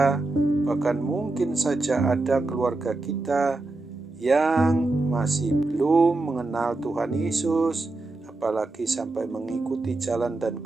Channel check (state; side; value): quieter; left; 3.1 dB